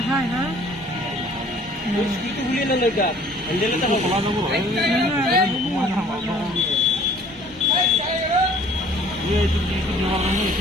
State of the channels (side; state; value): both; normal; correlation 0.53